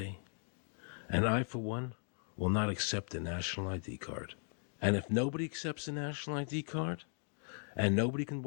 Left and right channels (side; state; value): right; silent; 53 dB below the other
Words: And I, for one, will not accept a national ID card. And if nobody accepts a national ID card, and nobody can